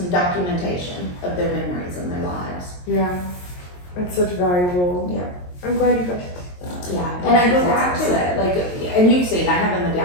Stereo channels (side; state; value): right; late; 22 ms